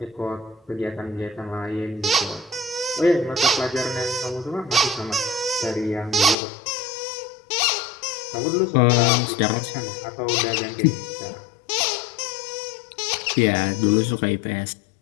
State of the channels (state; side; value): drops out; right; at 6.4 s